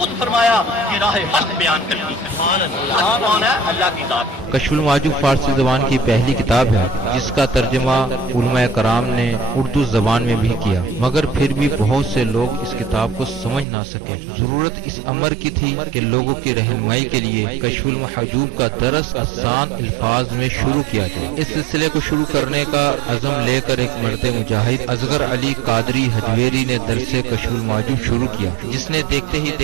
فرمایا کہ راہ حق بیان کرتی ہے۔ کون ہے؟ اللہ کی ذات۔ کشف المعجوب فارسی زبان کی پہلی کتاب ہے جس کا ترجمہ علماء کرام نے اردو زبان میں بھی کیا، مگر پھر بھی بہت سے لوگ اس کتاب کو سمجھ نہ سکے۔ ضرورت اس امر کی تھی کہ لوگوں کی رہنمائی کے لیے کشف المحجوب کا درس آسان الفاظ میں شروع کیا جائے۔ اس سلسلے کو شروع کرنے کا عزم لے کر ایک مرد مجاہد اصغر علی قادری حجویری نے درس کشف المعجوب شروع کیا، جس نے دیکھتے ہی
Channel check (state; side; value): drops out; left; at 13.7 s